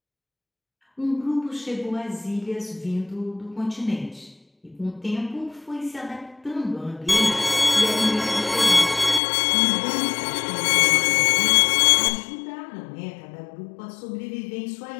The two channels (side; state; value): right; drops out; at 9.2 s